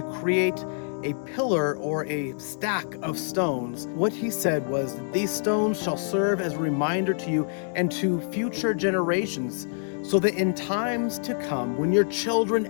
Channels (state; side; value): silent; right; digital silence